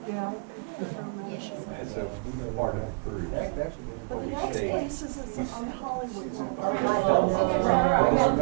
Yeah. As a part of the cruise. But the we next stayed- place is on Hollywood. It's in Oh, Hollywood.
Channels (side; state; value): left; quieter; 37.4 dB